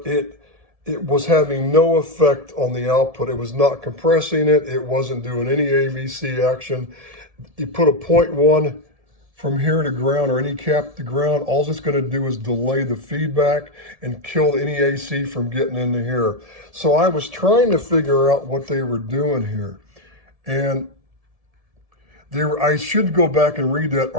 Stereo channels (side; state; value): left; late; 1.7 ms